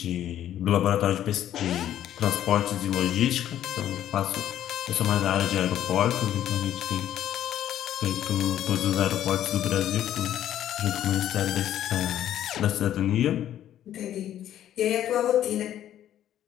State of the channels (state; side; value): quieter; right; 11.5 dB